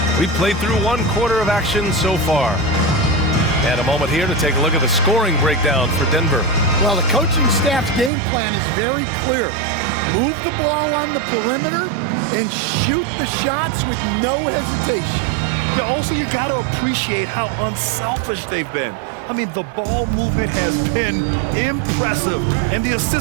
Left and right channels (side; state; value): left; drops out; at 8.1 s